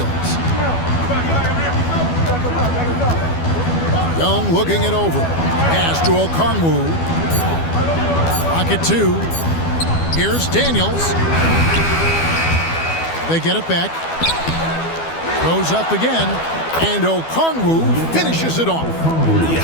Young looking it over. Pass to Okongwu. Pocket two. Here's Daniels. They get it back. Goes up again. And Okongwu finishes it off. Yeah,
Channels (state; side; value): late; right; 12 ms